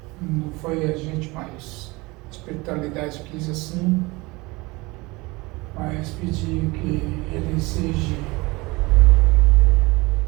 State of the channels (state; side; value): quieter; left; 23.6 dB